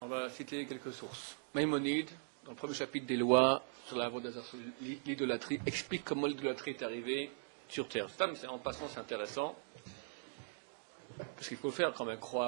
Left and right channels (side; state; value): left; silent; digital silence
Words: On va citer quelques sources. Maïmonide, dans le premier chapitre des lois sur l'idolâtrie, explique comment l'idolâtrie est arrivée sur Terre. Ça, mais en passant, c'est intéressant, parce qu'il faut faire quand même